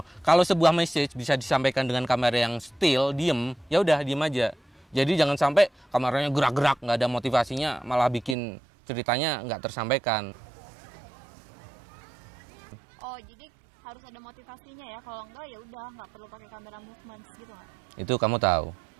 Kalau sebuah message bisa disampaikan dengan kamera yang still, diem, ya udah diem aja. Jadi jangan sampai kameranya gerak-gerak, nggak ada motivasinya, malah bikin ceritanya nggak tersampaikan. Oh, jadi harus ada motivasinya ya. Kalau enggak ya udah nggak perlu pakai kamera movement gitu nggak? Itu kamu tahu.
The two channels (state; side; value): drops out; left; at 8.3 s